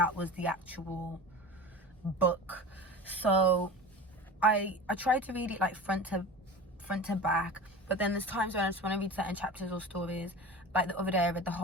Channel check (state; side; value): normal; both; correlation 0.33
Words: was the actual book. So I try to read it like front to back, but then there's times when I just want to read certain chapters or stories. Like the other day I read the